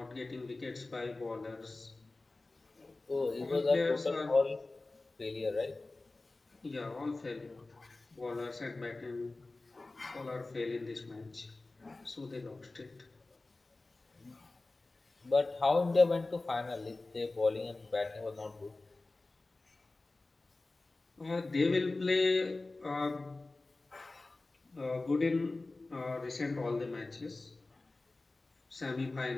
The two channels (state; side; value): quieter; right; 3.2 dB